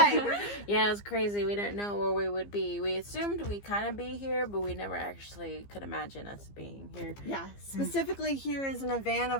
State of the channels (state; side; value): late; right; 15 ms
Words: Yeah, it was crazy. We didn't know where we would be. We assumed we'd kind of be here, but we never actually could imagine us being here. Yeah, specifically here is in a van